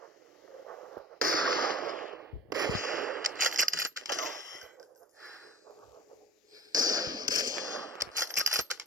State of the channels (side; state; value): both; normal; correlation 0.40